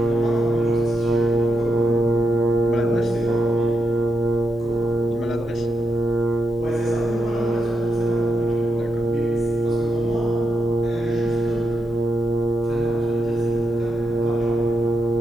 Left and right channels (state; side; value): normal; both; correlation 0.85